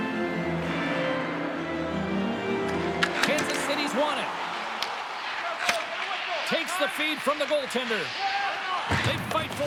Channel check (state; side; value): identical; both; correlation 1.00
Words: Kansas City's won it. Takes the feed from the goaltender. They fight